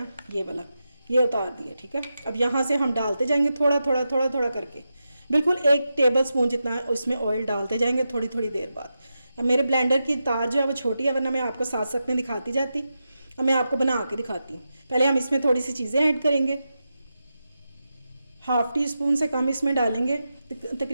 ये वाला ये उतार दिया। ठीक है, अब यहाँ से हम डालते जाएंगे थोड़ा थोड़ा थोड़ा थोड़ा करके, बिल्कुल 1 टेबल स्पून जितना इसमें ऑयल डालते जाएंगे थोड़ी थोड़ी देर बाद। अब मेरे ब्लेंडर की तार जो है वो छोटी है, वरना मैं आपको साथ साथ में दिखाती जाती। अब मैं आपको बना के दिखाती हूँ। पहले हम इसमें थोड़ी सी चीज़ें ऐड करेंगे। ½ टीस्पून से कम इसमें डालेंगे,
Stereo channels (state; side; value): inverted; both; correlation -0.89